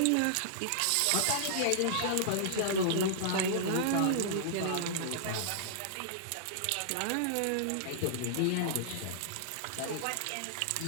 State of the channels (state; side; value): different; both; correlation -0.01